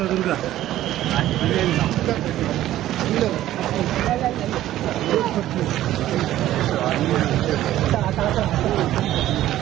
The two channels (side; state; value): left; quieter; 13.7 dB